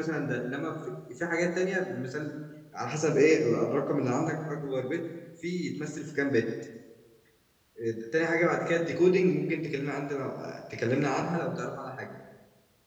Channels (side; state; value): both; identical; correlation 1.00